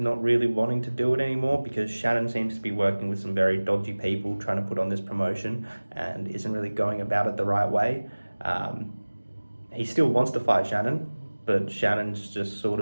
really wanting to do it anymore because Shannon seems to be working with some very dodgy people trying to put on this promotion and isn't really going about it the right way. He still wants to fight Shannon, but Shannon's just sort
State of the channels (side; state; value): both; inverted; correlation -1.00